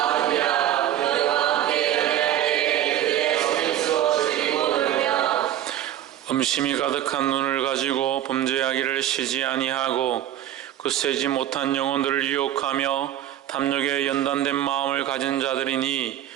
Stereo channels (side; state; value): left; quieter; 11.8 dB